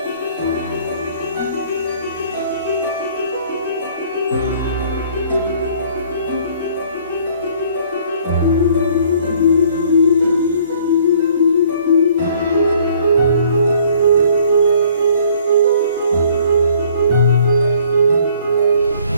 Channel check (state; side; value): inverted; both; correlation -0.57